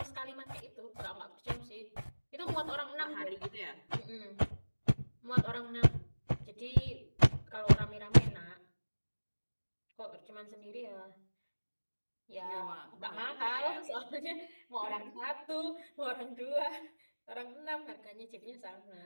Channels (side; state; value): both; inverted; correlation -1.00